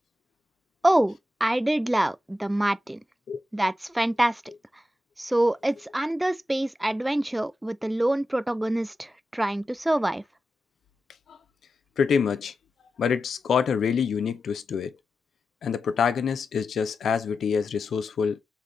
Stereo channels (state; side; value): normal; both; correlation 0.90